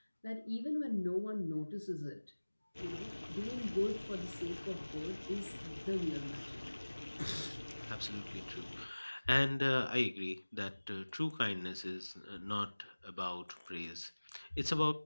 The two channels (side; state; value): both; inverted; correlation -1.00